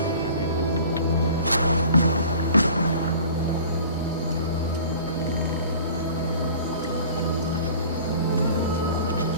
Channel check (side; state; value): both; inverted; correlation -0.44